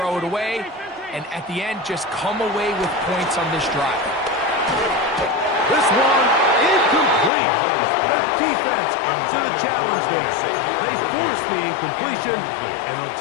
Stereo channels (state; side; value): drops out; right; at 7.3 s